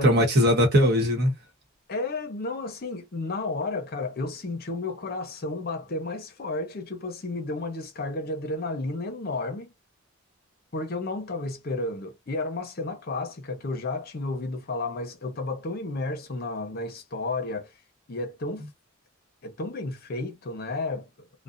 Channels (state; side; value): normal; both; correlation 0.26